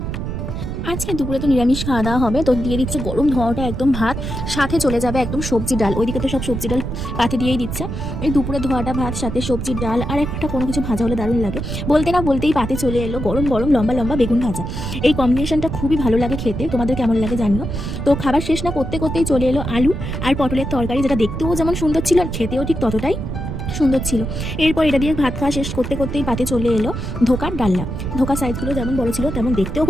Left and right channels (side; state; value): right; noise; rumble, 5 dB below the sound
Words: আজকে দুপুরে তো নিরামিষ খাওয়া দাওয়া হবে, তো দিয়ে দিচ্ছে গরম ধোঁয়াটা একদম ভাত, সাথে চলে যাবে একদম সবজি ডাল। ওইদিকে তো সব সবজি ডাল পাতে দিয়েই দিচ্ছে। এই দুপুরে ধোয়াটা ভাত, সাথে সবজির ডাল আর একটা কোনো কিছু ভাজা হলে দারুণ লাগে। বলতে না বলতেই পাতে চলে এলো গরম গরম লম্বা লম্বা বেগুন ভাজা। এই কম্বিনেশনটা খুবই ভালো লাগে খেতে, তোমাদের কেমন লাগে জানিও। তো খাবার শেষ না করতে করতেই চলে এলো আলু আর পটলের তরকারি, যেটা দেখতেও যেমন সুন্দর ছিল আর খেতেও ঠিক ততটাই সুন্দর ছিল। এরপর এটা দিয়ে ভাত খাওয়া শেষ করতে করতেই পাতে চলে এলো ধোকার ডালনা। ধোকার সাইজগুলো যেমন বড় ছিল তেমন দেখতেও